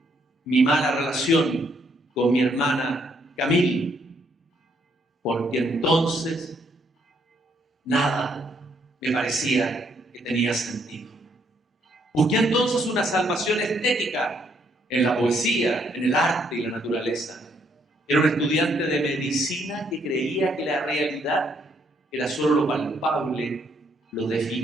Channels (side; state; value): both; normal; correlation 0.71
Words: mi mala relación con mi hermana Camille, porque entonces nada me parecía que tenía sentido. Busqué entonces una salvación estética en la poesía, en el arte y la naturaleza. Era un estudiante de medicina que creía que la realidad era solo lo palpable, lo